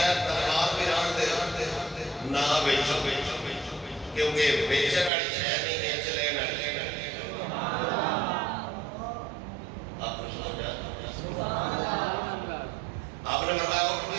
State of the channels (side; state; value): left; drops out; at 5.1 s